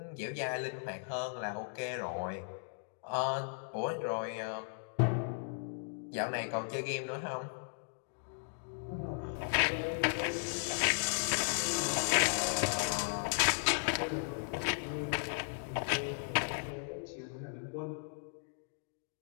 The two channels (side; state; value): right; silent; digital silence